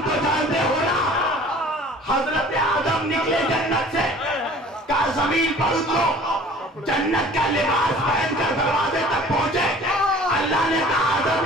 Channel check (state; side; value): normal; both; correlation 0.48